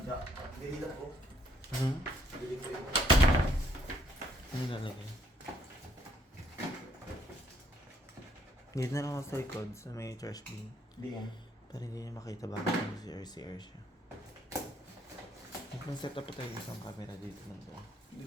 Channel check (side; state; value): both; normal; correlation 0.68